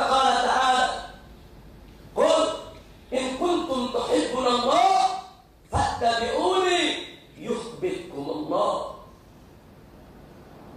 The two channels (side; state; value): both; identical; correlation 1.00